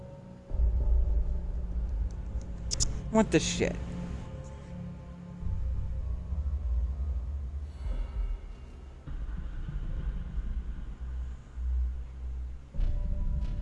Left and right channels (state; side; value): identical; both; correlation 1.00